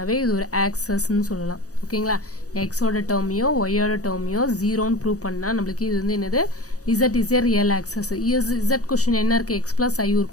இது ஒரு ஆக்சஸ் ன்னு சொல்லலாம் ஓகேங்களா x ஓட டேர்மையோ y ஓட டேர்மையோ 0 ன்னு ப்ரூவ் பண்ணா நமக்கு இது வந்து என்னது z is a real axis z question என்ன இருக்கு x plus i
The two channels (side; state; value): right; late; 0.66 ms